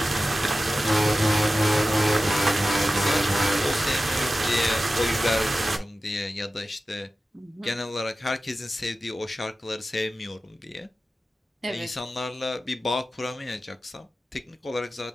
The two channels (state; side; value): normal; both; correlation 0.94